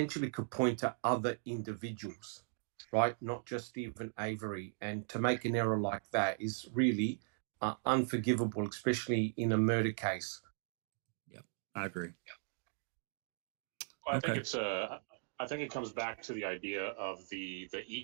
could point to other individuals, right? Not just even Avery. And to make an error like that is really unforgivable, especially in a murder case. I agree. Well, I think it comes back to the idea of the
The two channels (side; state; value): left; silent; digital silence